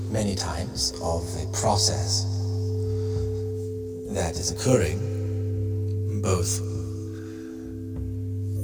many times of a process that is occurring both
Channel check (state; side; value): identical; both; correlation 1.00